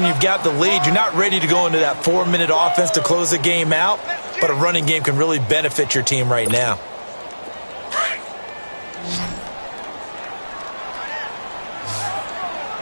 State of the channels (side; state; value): both; inverted; correlation -1.00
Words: you've got the lead. You're not ready to go into that 4-minute offense to close the game out, but a running game can really benefit your team right now.